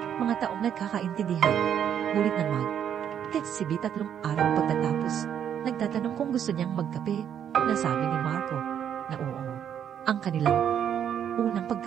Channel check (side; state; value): left; quieter; 9.1 dB